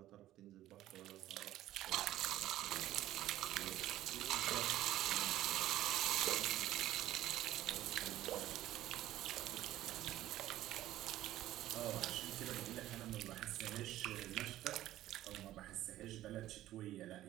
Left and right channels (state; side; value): quieter; left; 14.2 dB